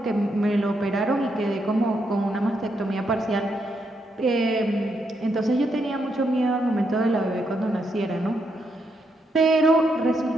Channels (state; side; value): normal; both; correlation 0.79